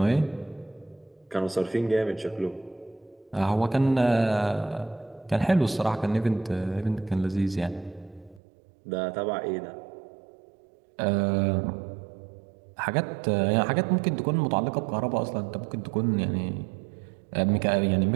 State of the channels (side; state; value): left; drops out; at 8.4 s